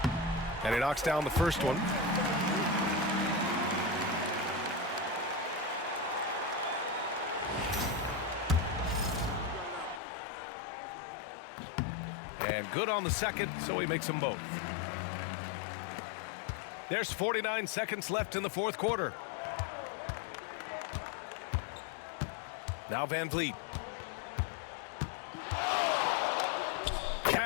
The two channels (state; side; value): drops out; right; at 10.0 s